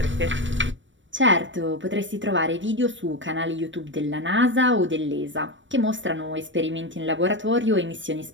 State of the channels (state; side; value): late; left; 0.55 ms